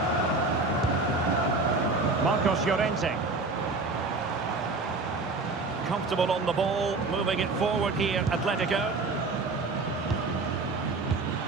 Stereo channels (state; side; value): quieter; left; 3.6 dB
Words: Marcos Llorente. Comfortable on the ball, moving it forward here, Atletico.